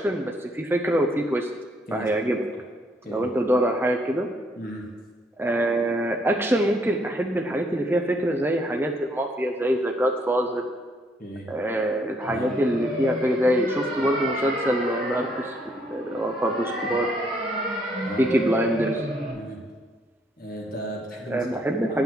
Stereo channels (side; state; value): both; normal; correlation 0.69